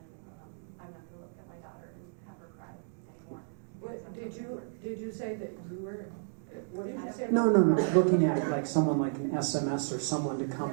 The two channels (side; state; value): left; silent; digital silence